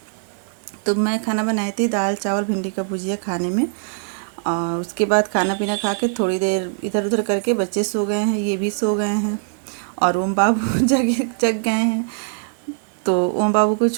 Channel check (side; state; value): left; silent; 62 dB below the other